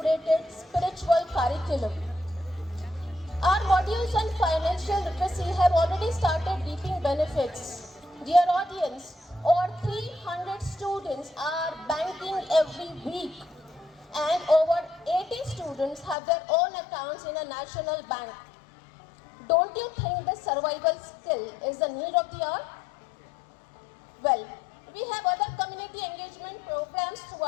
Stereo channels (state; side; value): drops out; right; at 16.2 s